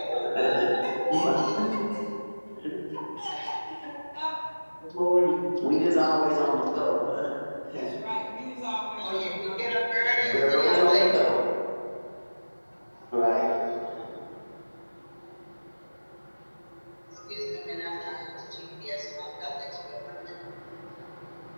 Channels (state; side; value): inverted; both; correlation -1.00